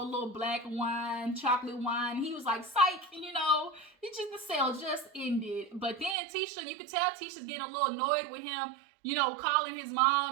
black wine, chocolate wine. He was like, psych, and the sale just ended. But then Tisha, you could tell Tisha's getting a little annoyed with him, calling his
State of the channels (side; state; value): left; drops out; at 6.2 s